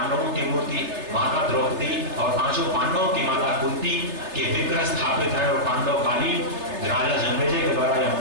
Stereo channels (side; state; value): left; late; 3.3 ms